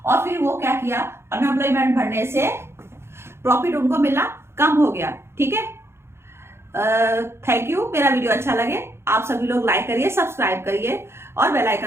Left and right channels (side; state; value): left; late; 0.12 ms